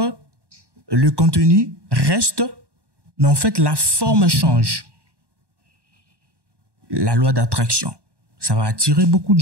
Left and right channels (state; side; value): late; left; 1.1 ms